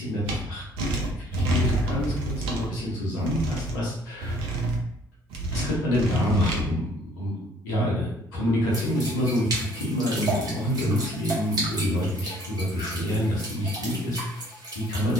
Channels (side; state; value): both; normal; correlation 0.58